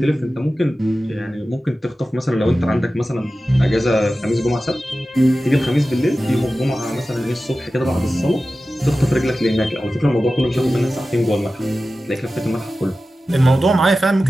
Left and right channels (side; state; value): both; normal; correlation 0.94